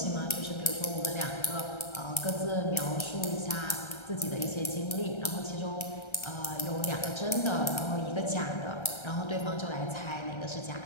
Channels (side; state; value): right; late; 1.3 ms